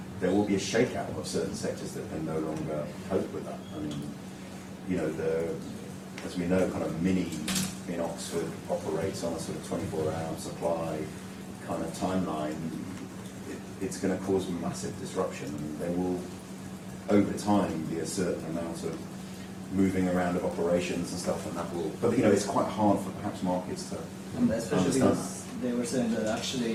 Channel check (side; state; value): both; identical; correlation 1.00